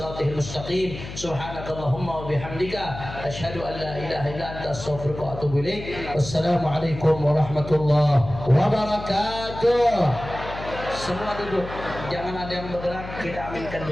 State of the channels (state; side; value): noise; left; hum, 11 dB below the sound